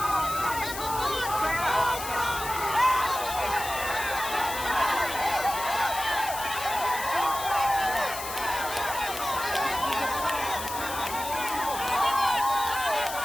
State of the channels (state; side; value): noise; left; hiss, 8 dB below the sound